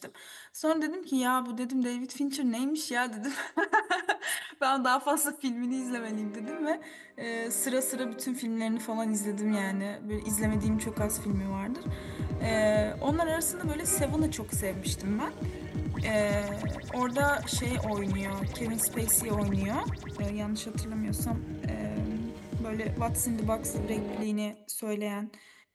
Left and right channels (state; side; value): identical; both; correlation 1.00